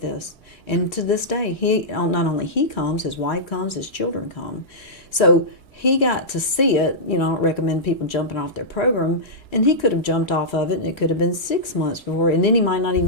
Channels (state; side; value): late; right; 1.9 ms